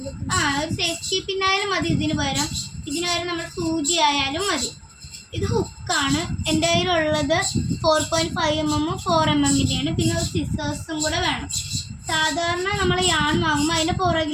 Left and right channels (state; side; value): identical; both; correlation 1.00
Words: ഒരു സേഫ്റ്റി പിന്നായാലും മതി. ഇതിന് പകരം നമ്മൾ സൂചി ആയാലും മതി. ഇത് ഹുക്കാണ്. എൻ്റെ കയ്യിലുള്ളത് 4.5 mm 4 mm. പിന്നെ ഒരു സിസേഴ്സും കൂടെ വേണം. സാധാരണ നമ്മൾ യാൺ വാങ്ങുമ്പോൾ അതിൻ്റെ